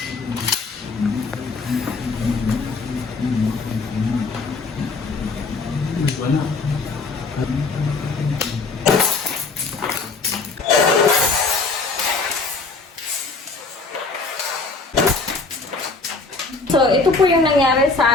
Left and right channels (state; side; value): quieter; right; 4.0 dB